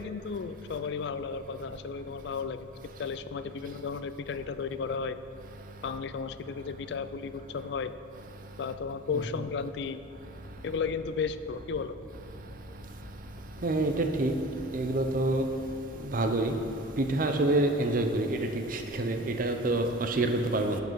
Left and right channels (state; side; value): normal; both; correlation 0.33